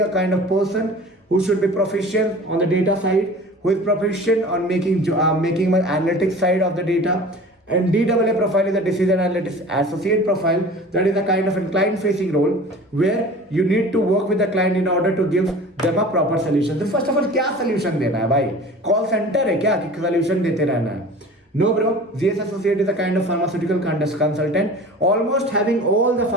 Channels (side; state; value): both; normal; correlation 0.41